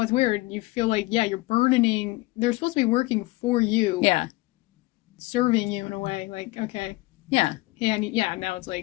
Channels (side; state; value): right; quieter; 21.2 dB